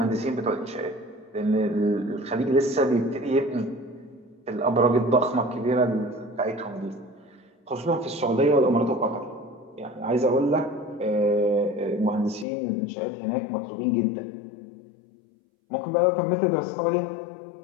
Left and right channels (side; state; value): right; drops out; at 12.5 s